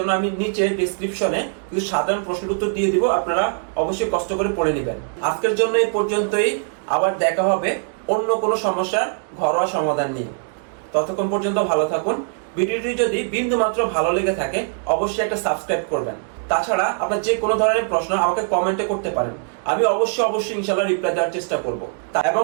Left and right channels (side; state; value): left; silent; 65 dB below the other